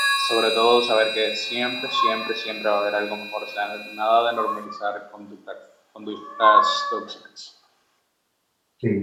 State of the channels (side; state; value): both; identical; correlation 1.00